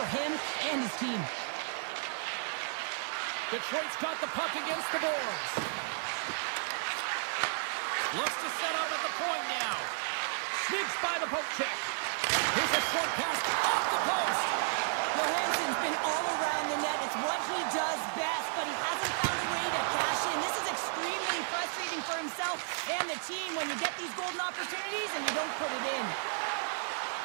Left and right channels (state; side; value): silent; left; digital silence